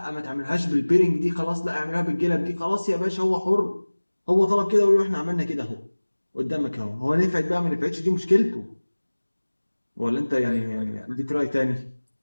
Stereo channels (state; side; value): inverted; both; correlation -1.00